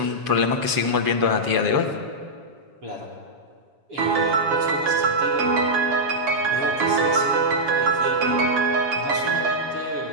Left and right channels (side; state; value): left; late; 7.2 ms